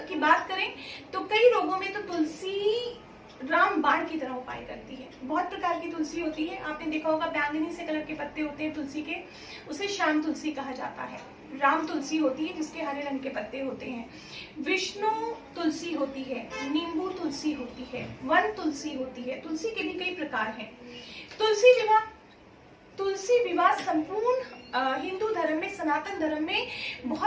की बात करें तो कई रोगों में तो तुलसी रामबाण की तरह उपाय करती है। बहुत प्रकार की तुलसी होती है, आपने देखा होगा बैंगनी से कलर के पत्ते होते हैं तुलसी के, उसे श्याम तुलसी कहा जाता है। राम तुलसी होती है जिसके हरे रंग के पत्ते होते हैं। विष्णु तुलसी होती है, नींबू तुलसी होती है, वन तुलसी होती है। तुलसी के भी कई प्रकार हैं। तुलसी विवाह संपूर्ण हिंदू धर्म में, सनातन धर्म में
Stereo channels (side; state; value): both; identical; correlation 1.00